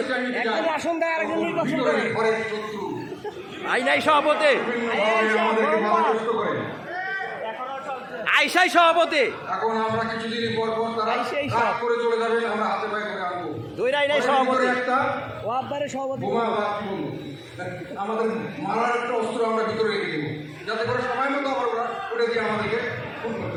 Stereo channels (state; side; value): identical; both; correlation 1.00